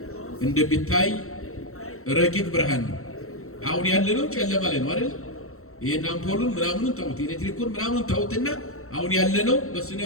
እንደሚታይ ረቂቅ ብርሃን ነው። አሁን ያለነው ጨለማ ላይ ነው አይደል? ይሄን አምፖሉን ምናምኑን ተውት፣ ኤሌክትሪኩን ምናምኑን ተውትና አሁን ያለነው በስነ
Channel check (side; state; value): right; late; 0.63 ms